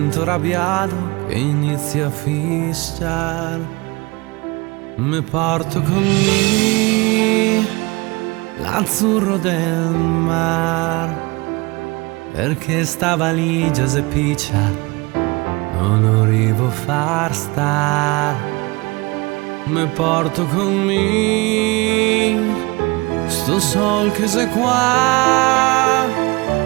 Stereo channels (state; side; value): quieter; left; 24.6 dB